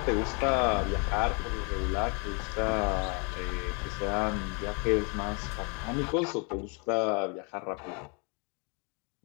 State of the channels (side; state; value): right; quieter; 34.3 dB